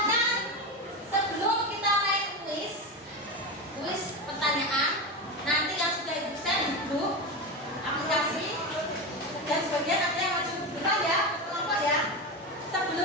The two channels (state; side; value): normal; both; correlation 0.19